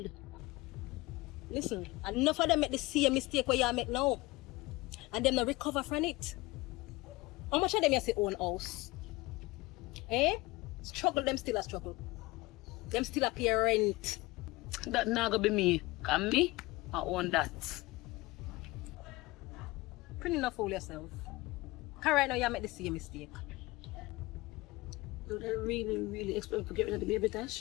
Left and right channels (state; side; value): quieter; right; 21.6 dB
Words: Listen, enough of them make the same mistake where you make now. And them not recover from it. How much of them you say own house? Eh? Struggle them still a struggle. Them still a pay rent. That not gonna be me. Can me? I own that. Pretty enough fool yourself. Because right now you make the same mistake. Do they really expect to get rid of the baby,